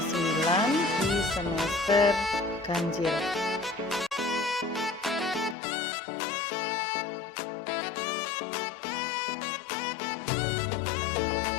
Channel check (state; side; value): drops out; right; at 5.6 s